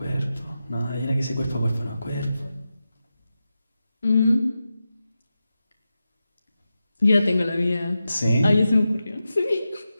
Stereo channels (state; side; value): inverted; both; correlation -0.91